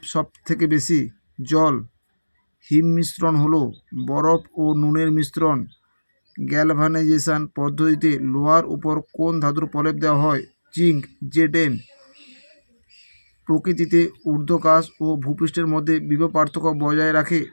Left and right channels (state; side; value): inverted; both; correlation -1.00